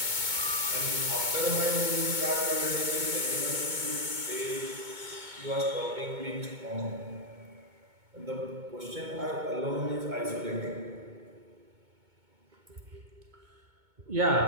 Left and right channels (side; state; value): left; late; 2.2 ms